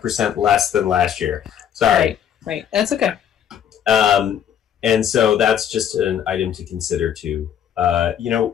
less than last year. Sorry. Right. That's okay. And so that's just an item to consider too. You know,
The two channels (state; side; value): quieter; right; 9.2 dB